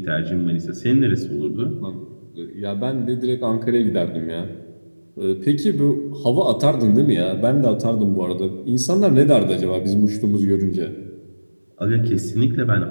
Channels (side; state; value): both; inverted; correlation -1.00